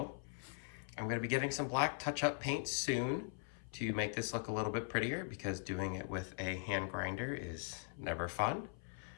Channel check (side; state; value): right; silent; 51 dB below the other